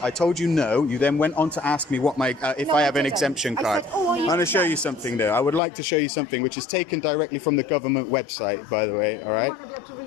I told you no. You then went on to ask me what if I have an exemption card. I'm going to show you something though. I would like to show you something which is taken directly from the government website, by the way. All right. You might not be able to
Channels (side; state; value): right; drops out; at 5.6 s